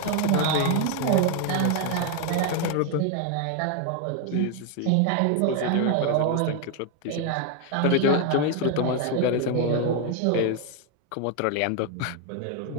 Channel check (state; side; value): different; both; correlation 0.01